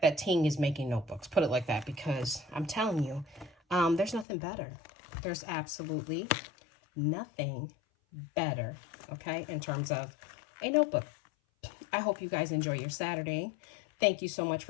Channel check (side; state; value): right; drops out; at 4.2 s